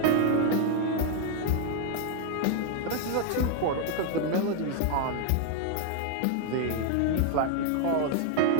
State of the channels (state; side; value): different; both; correlation 0.00